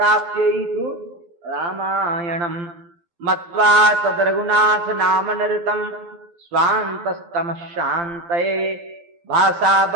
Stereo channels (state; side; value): late; left; 12 ms